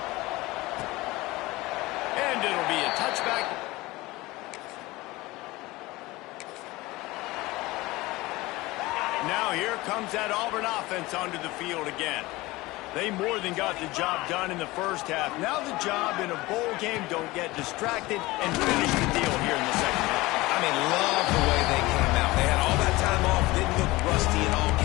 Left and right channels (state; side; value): quieter; right; 20.4 dB